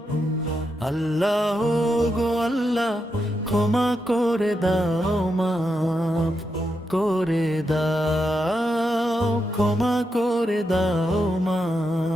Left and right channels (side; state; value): both; normal; correlation 0.85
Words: আল্লাহ গো আল্লাহ, ক্ষমা করে দাও, মাফ করে দাও, ক্ষমা করে দাও,